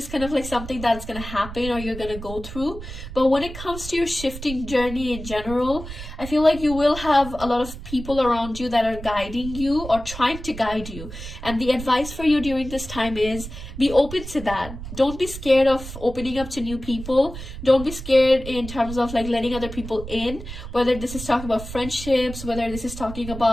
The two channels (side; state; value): right; noise; rumble, 11 dB below the sound